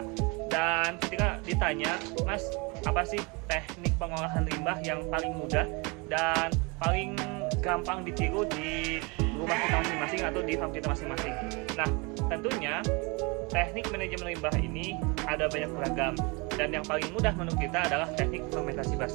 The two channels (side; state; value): left; quieter; 28.9 dB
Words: Dan ketika ditanya, Mas, apa sih teknik pengolahan limbah yang paling mudah dan paling gampang ditiru di rumah kita masing-masing atau di farm kita masing-masing? Nah, tentunya teknik manajemen limbah ini ada banyak beragam, dan yang paling mudah menurut kita adalah teknik fermentasi